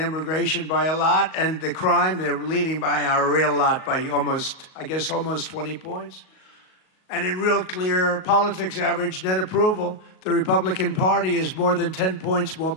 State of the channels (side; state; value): right; late; 38 ms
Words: by a lot. And the crime, they're leading by a real lot, by almost 20 points. And in real clear politics average net approval, the Republican Party is more than 10 points more